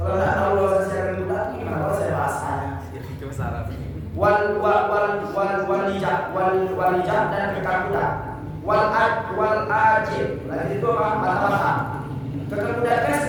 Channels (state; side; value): identical; both; correlation 1.00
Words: nggak tahu bahasa secara budak, gimana kalau saya bahasanya? Itu salah. Walijah dan kekang budak. Wal ajib. Lagi itu apa? Mata-mata. Kekang budak kan